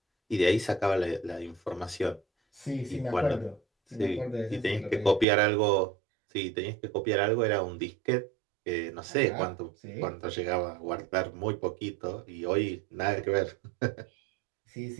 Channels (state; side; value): drops out; left; at 5.2 s